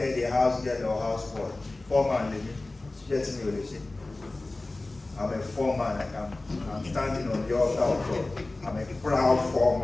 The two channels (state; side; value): quieter; right; 3.0 dB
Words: a house girl or house boy, formerly. I'm a foreman. I'm standing on the altar of God. I'm a proud